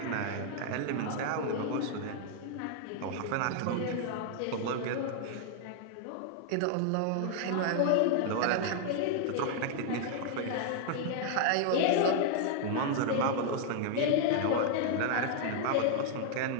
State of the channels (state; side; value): different; both; correlation 0.00